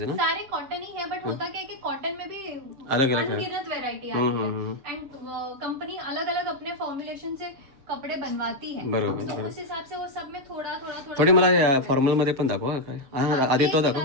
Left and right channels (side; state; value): left; late; 7.6 ms